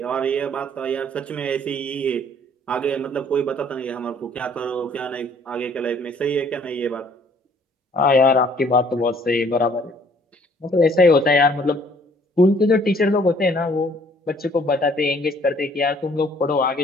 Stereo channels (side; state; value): both; normal; correlation 0.59